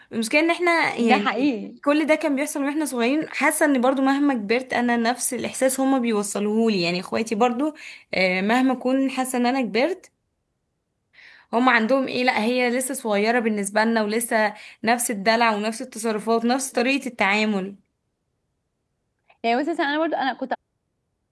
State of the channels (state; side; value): identical; both; correlation 1.00